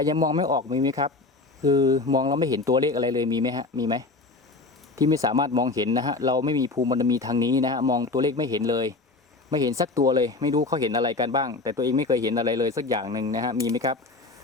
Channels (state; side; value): quieter; right; 3.4 dB